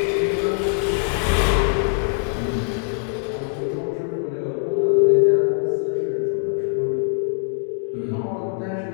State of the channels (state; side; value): silent; right; 58 dB below the other